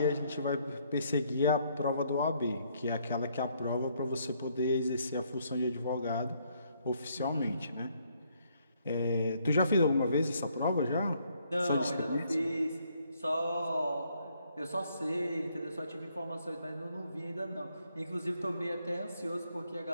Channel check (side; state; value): both; inverted; correlation -0.70